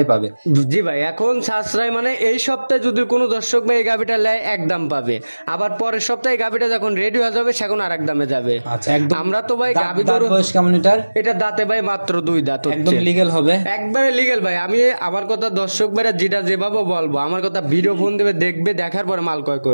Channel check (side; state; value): both; inverted; correlation -1.00